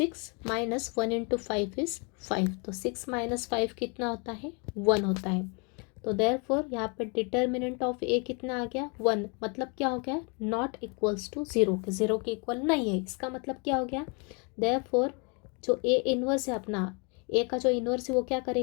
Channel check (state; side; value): quieter; right; 33.7 dB